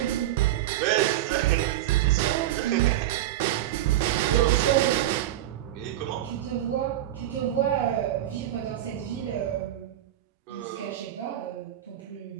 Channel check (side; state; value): left; quieter; 13.2 dB